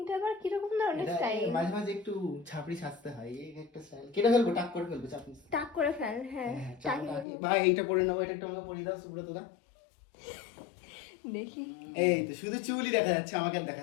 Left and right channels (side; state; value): right; drops out; at 7.2 s